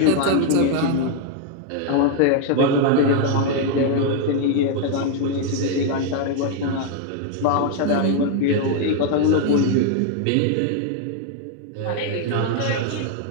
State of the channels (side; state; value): both; different; correlation 0.00